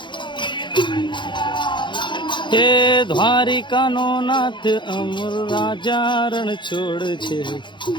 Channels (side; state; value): right; late; 0.23 ms